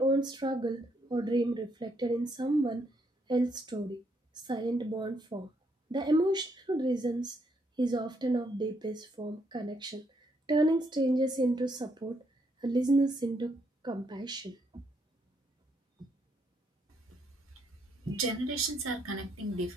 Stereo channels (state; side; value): normal; both; correlation 0.74